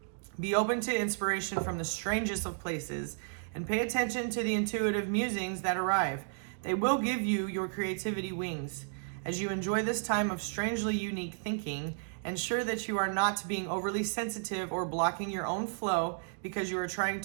Be open to inspiration from the strangest of places and pay attention to the intuitive musings that arrive. They will give you your creativity wings. As you enjoy this time of strangely unique thinking, ensure that you are not being overly sensitive or blocking your own flow because you are trying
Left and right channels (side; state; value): left; silent; digital silence